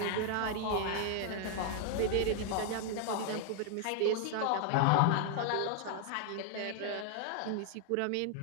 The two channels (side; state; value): both; different; correlation 0.00